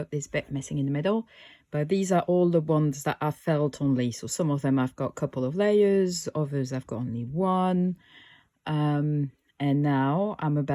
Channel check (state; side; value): identical; both; correlation 1.00